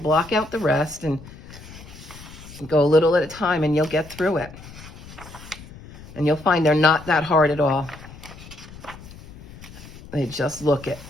block out the rest and go a little at a time, and you'll get through it. And you'll find they're not that hard at all. They just look it.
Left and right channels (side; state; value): left; noise; rumble, 17 dB below the sound